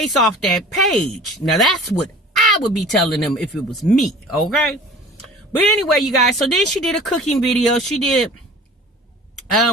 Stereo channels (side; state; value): both; normal; correlation 0.44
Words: off that page. Now, that's what I would be telling them if it was me, okay? But anyway, you guys, so then she did a cooking video. She did